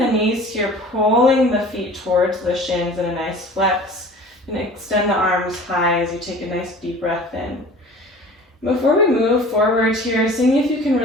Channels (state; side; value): normal; both; correlation 0.43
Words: knees here, pulling the feet towards the shins in a nice flex. And extend the arms high as you take a nice deep breath in. Before we move forward here, seeing if you can